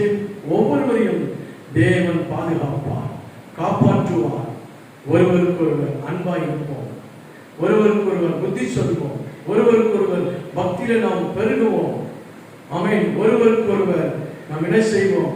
ஒவ்வொருவரையும் தேவன் பாதுகாப்பார், காப்பாற்றுவார். ஒருவருக்கொருவர் அன்பாய் இருப்போம், ஒருவருக்கொருவர் புத்தி சொல்வோம், ஒருவருக்கொருவர் பக்தியில நாம் பெருகுவோம். ஆமென். ஒருவருக்கொருவர் நாம் என்ன செய்வோம்?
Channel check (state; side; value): identical; both; correlation 1.00